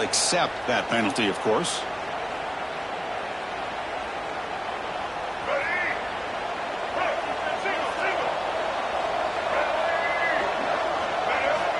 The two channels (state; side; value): identical; both; correlation 1.00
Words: accept that penalty, of course.